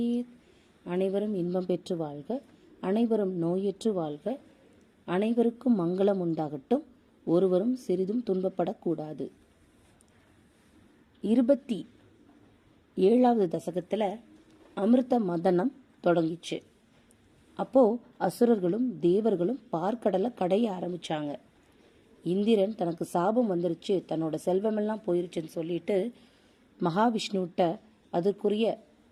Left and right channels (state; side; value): identical; both; correlation 1.00